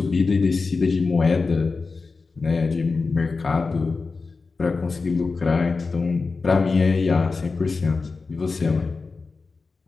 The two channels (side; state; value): right; quieter; 4.2 dB